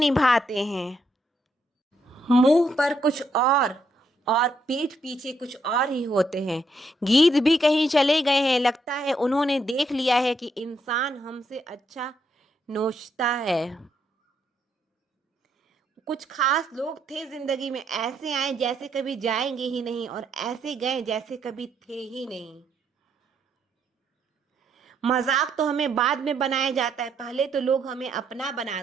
हैं। मुंह पर कुछ और पीठ पीछे कुछ और ही होते हैं। गीत भी कहीं चले गए हैं, लगता है उन्होंने देख लिया है कि इंसान हमसे अच्छा नोचता है। कुछ खास लोग थे जिंदगी में, ऐसे आए जैसे कभी जाएंगे ही नहीं और ऐसे गए जैसे कभी थे ही नहीं। मजाक तो हमें बाद में बनाया जाता है, पहले तो लोग हमें अपना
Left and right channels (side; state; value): both; normal; correlation 0.76